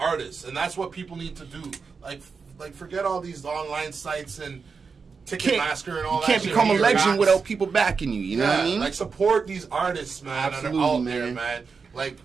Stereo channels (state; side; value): quieter; left; 5.2 dB